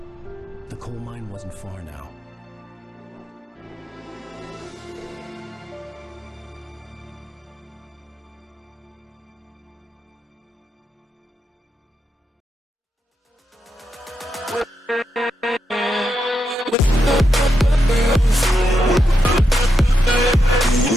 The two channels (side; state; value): both; normal; correlation 0.84